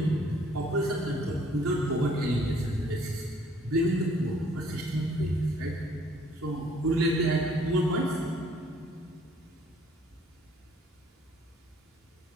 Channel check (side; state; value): both; normal; correlation 0.61